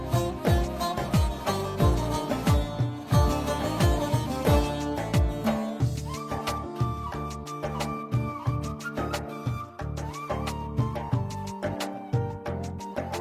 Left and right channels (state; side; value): identical; both; correlation 1.00